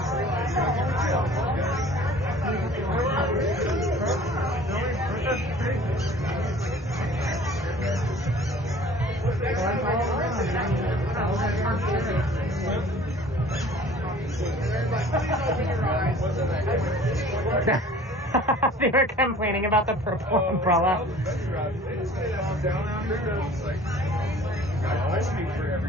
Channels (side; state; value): both; normal; correlation 0.48